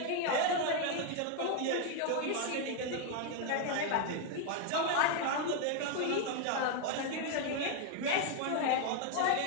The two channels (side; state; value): both; different; correlation 0.01